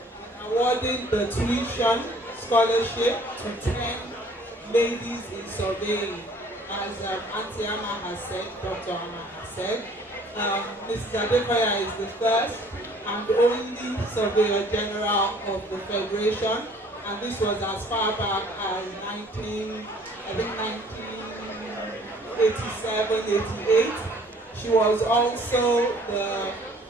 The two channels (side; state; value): both; normal; correlation 0.55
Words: awarding the tuition scholarship to 10 ladies in surveying. As Auntie Amma has said, Dr. Amma has said, Mrs. Adekoya is the first and only Surveyor General of the Federation, and this was as far back as 1987, 88. She was also the